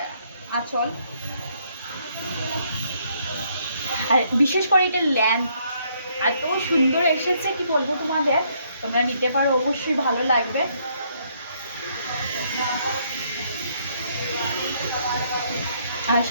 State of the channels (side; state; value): both; inverted; correlation -0.70